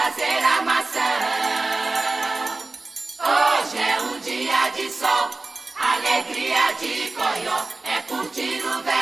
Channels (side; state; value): left; quieter; 3.4 dB